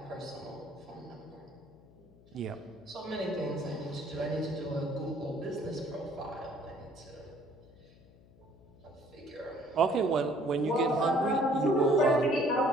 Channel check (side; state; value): left; noise; hum, 25 dB below the sound